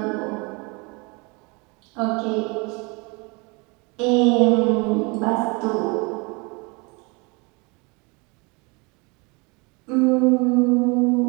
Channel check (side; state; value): left; quieter; 28.9 dB